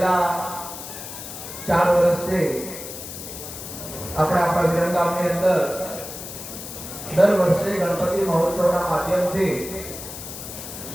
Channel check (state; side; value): noise; left; hiss, 10 dB below the sound